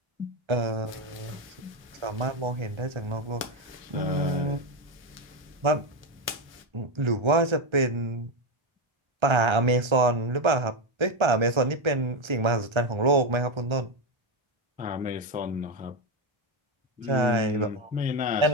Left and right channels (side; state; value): left; late; 1.3 ms